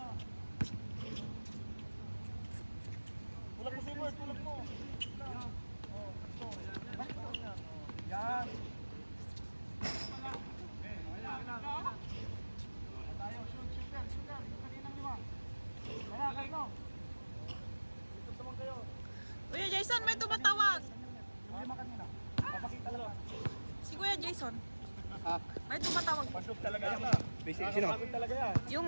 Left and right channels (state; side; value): inverted; both; correlation -1.00